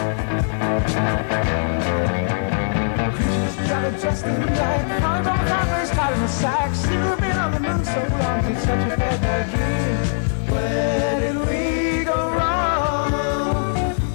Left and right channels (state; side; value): silent; right; digital silence